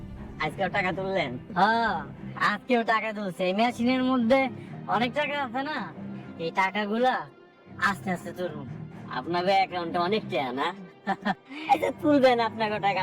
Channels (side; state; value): both; identical; correlation 1.00